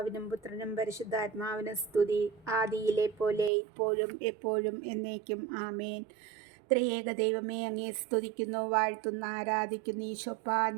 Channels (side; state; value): left; drops out; at 3.5 s